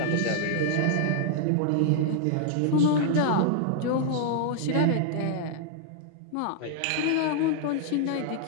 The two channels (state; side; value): different; both; correlation -0.01